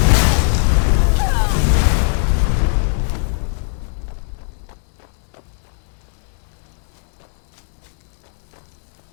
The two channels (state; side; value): silent; right; 66 dB below the other